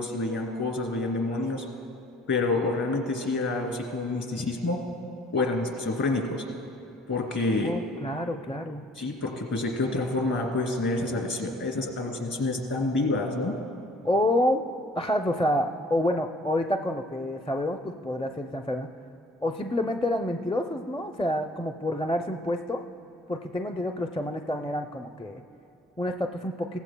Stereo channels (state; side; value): normal; both; correlation 0.55